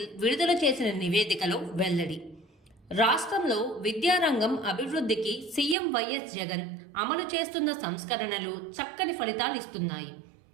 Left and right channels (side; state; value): left; drops out; at 5.8 s